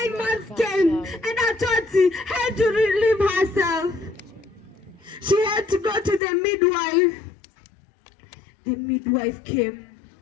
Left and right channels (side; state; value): right; drops out; at 6.2 s